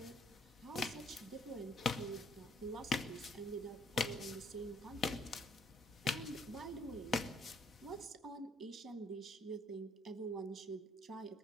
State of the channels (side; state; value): both; normal; correlation 0.65